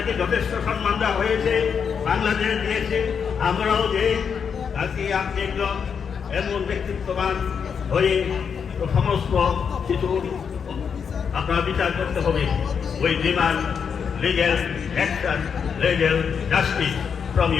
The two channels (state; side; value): quieter; right; 6.7 dB